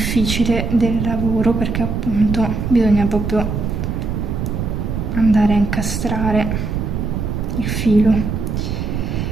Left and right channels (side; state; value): right; noise; rumble, 2 dB below the sound